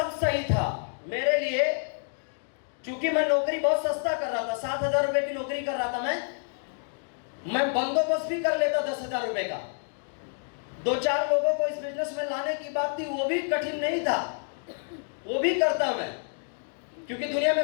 सही था मेरे लिए, क्योंकि मैं नौकरी बहुत सस्ता कर रहा था। 7,000 रुपए की नौकरी कर रहा था मैं बंदोबस्त भी कर लेता 10,000 रुपए का। 2-4 लोगों को इस बिजनेस में लाने की बात थी, वो भी कठिन नहीं था, वो भी करता मैं, क्योंकि दुनिया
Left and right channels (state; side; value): silent; right; digital silence